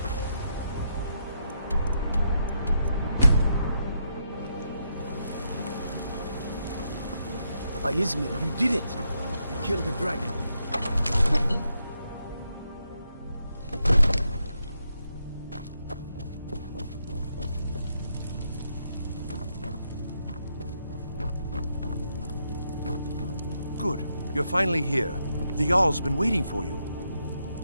Izmir, you did it! You killed the dragon. Good. You're finally here. The Jarl's been waiting for you.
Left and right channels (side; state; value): both; inverted; correlation -0.80